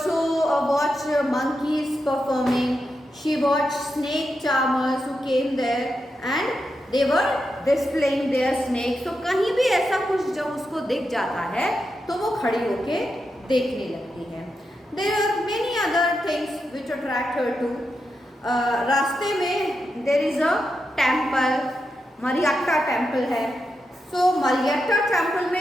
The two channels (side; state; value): both; normal; correlation 0.86